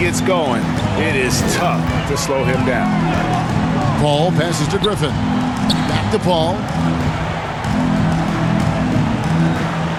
going, it is tough to slow him down. Paul passes to Griffin. Back to Paul.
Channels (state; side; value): identical; both; correlation 1.00